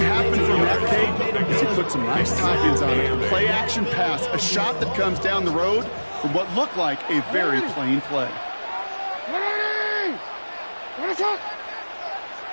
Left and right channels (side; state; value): both; inverted; correlation -1.00